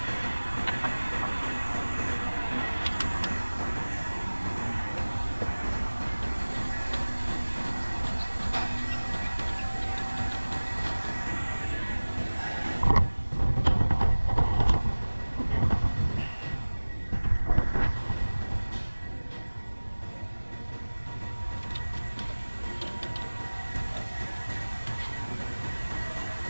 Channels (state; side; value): inverted; both; correlation -1.00